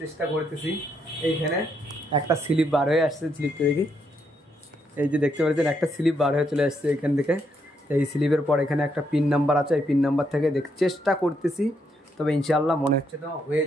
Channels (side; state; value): both; normal; correlation 0.76